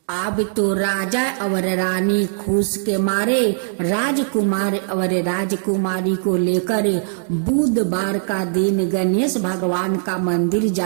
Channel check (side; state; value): left; silent; digital silence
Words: अब तो राजा और रानी खुश के मारे राजकुमार और राजकुमारी को लेकर बुधवार का दिन गणेश भगवान का मंदिर